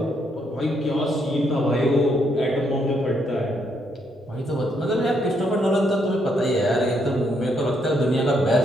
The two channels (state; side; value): normal; both; correlation 0.75